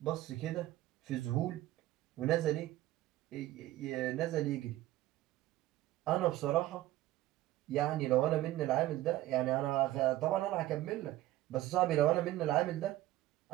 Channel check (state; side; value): quieter; left; 15.7 dB